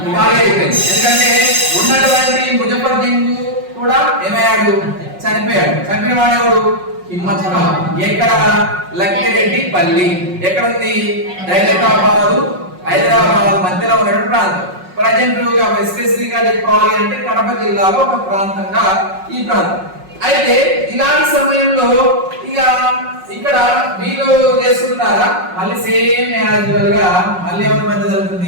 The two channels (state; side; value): late; left; 5.5 ms